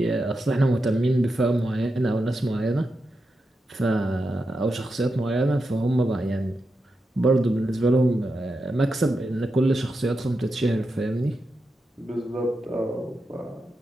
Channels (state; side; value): normal; both; correlation 0.88